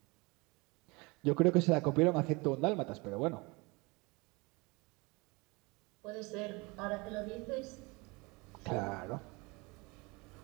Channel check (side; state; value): left; quieter; 26.4 dB